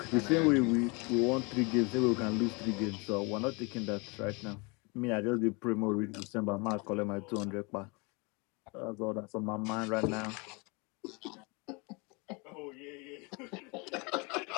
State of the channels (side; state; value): right; quieter; 29.5 dB